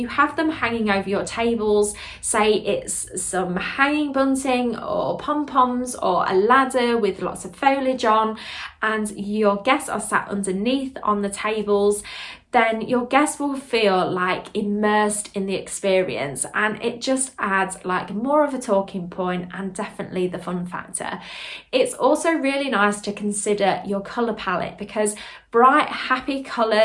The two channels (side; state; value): both; identical; correlation 1.00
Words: have them hanging over your tables, say it's some hanging bunting or pom-poms or a ladder with lots of foliage on, and your guests are sat underneath on the tables, then your guests will feel like immersed in the experience, and it just adds like more of a talking point and definitely the fun factor. It's also really nice to consider your colour palette because bright, happy